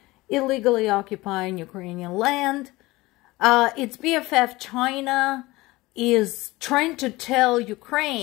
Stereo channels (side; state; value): right; quieter; 20.3 dB